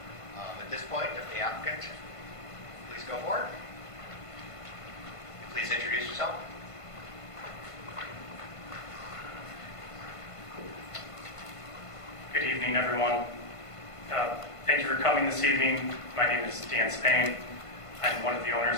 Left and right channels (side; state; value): right; late; 1.5 ms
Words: At this point, if the applicant, please go forward. Please introduce yourself. Good evening, everyone. Thank you for coming this evening. My name is Dan Spain. I'm one of the